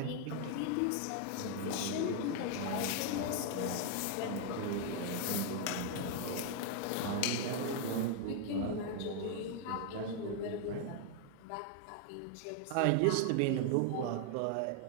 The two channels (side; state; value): both; different; correlation 0.00